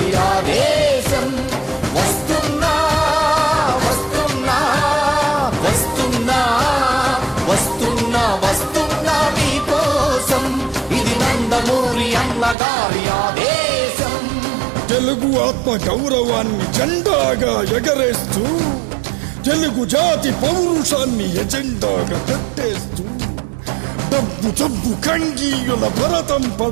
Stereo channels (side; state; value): left; drops out; at 12.6 s